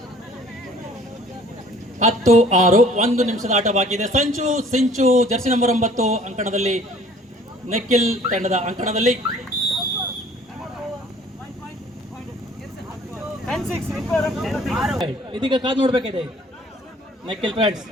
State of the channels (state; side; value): normal; both; correlation 0.54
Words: 1 ನಿಮಿಷದ ಆಟ ಬಾಕಿ ಇದೆ. ಸಿಂಚು ಜರ್ಸಿ ನಂಬರ್ 9 ಅಂಕಣದಲ್ಲಿ, ನಕಿಲ್ ತಂಡದ ಅಂಕಣದಲ್ಲಿ. ಇದೀಗ ಕಾದು ನೋಡ್ಬೇಕಿದೆ ನಕಿಲ್ friends